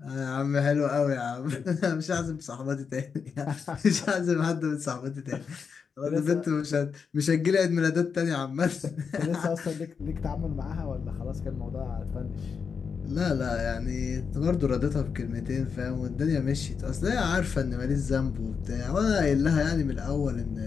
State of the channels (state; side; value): quieter; right; 6.0 dB